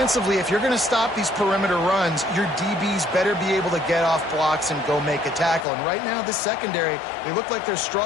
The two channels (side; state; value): right; drops out; at 5.7 s